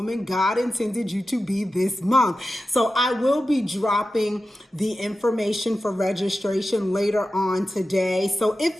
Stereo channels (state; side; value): normal; both; correlation 0.93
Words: God Intended You to Be this month. So I will be dropping the information for registration later on today. So if